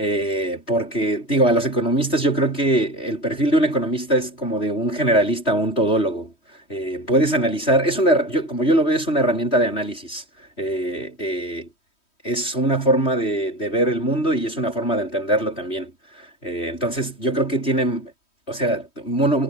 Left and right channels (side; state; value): right; late; 3.1 ms